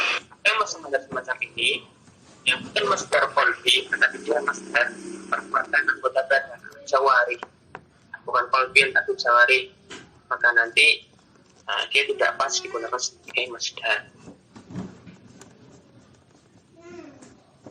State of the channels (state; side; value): identical; both; correlation 1.00